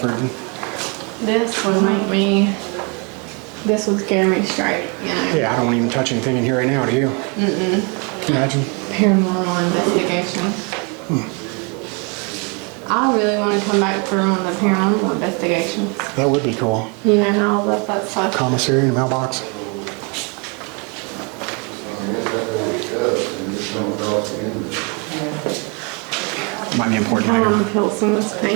This would make me. This would scare me straight. You know? Yeah, I don't want to even touch anything in here right now. Do you? Imagine. Paranormal investigation. I really want to come back for one of the paranormal investigations. That would be cool. You know how I love that stuff. Commissary and mailbox. Might be important I later. want to peel some of this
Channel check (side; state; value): left; quieter; 33.5 dB